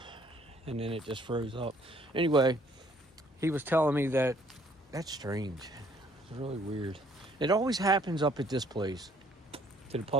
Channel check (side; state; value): both; normal; correlation 0.62